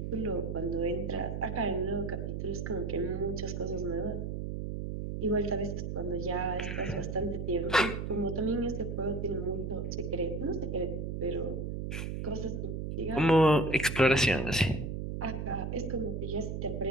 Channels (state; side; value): noise; right; hum, 3 dB below the sound